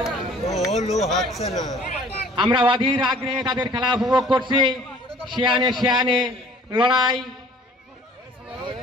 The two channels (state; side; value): normal; both; correlation 0.52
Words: আমরা অধীর আগ্রহে তাদের খেলা উপভোগ করছি। শিয়ানে লড়াই।